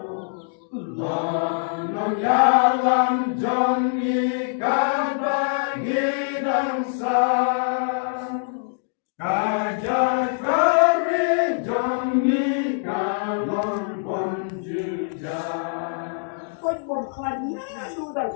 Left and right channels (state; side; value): silent; right; digital silence